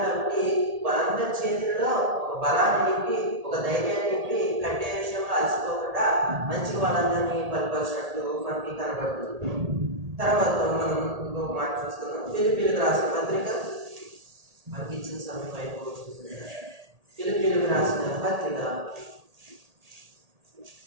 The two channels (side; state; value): left; late; 1.8 ms